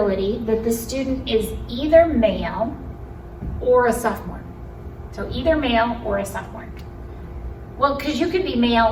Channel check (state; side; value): identical; both; correlation 1.00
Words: that the student is either male or a sophomore? So either male or a sophomore. Well, because you could be